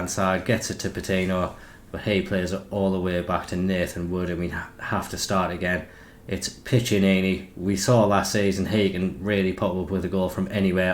side, gets it to Patino, but he plays it all the way back to Nathan Wood, and we have to start again. It's Piccinini. We saw last season he can really pop up with a goal from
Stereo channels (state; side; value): identical; both; correlation 1.00